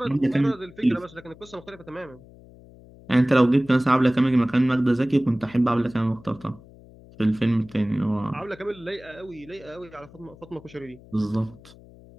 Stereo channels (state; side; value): noise; left; hum, 22 dB below the sound